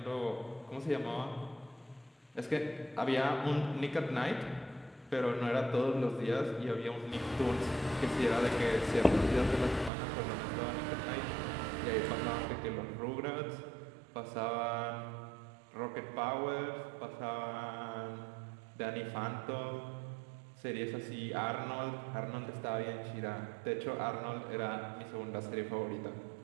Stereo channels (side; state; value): left; drops out; at 9.9 s